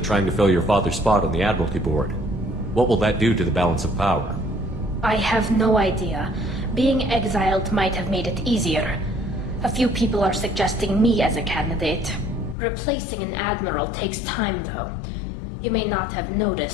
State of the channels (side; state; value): right; drops out; at 12.6 s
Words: to fill your father's spot on the Admiralty Board. What will that do to the balance of power? I have no idea. Being exiled might have made it easier. A few people are suggesting me as a candidate. Replacing an admiral takes time, though. You may not have